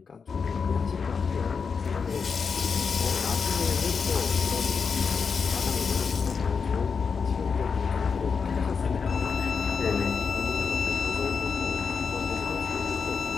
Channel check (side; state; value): right; quieter; 5.7 dB